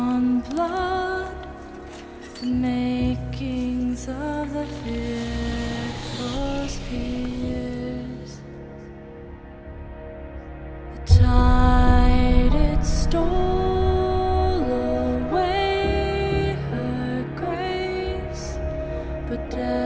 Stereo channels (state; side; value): identical; both; correlation 1.00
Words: blood, the makings of the fearful fears. The tide it stole away her grace, but